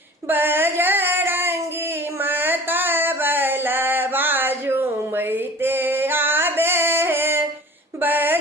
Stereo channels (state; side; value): normal; both; correlation 0.43